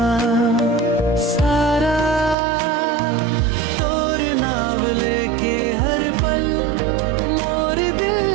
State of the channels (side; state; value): left; drops out; at 2.4 s